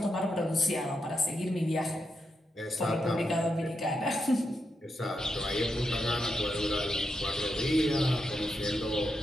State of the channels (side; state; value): both; normal; correlation 0.85